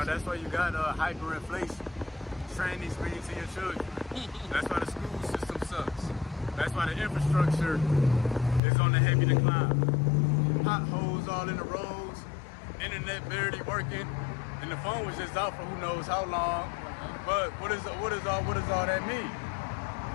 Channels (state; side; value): drops out; right; at 8.6 s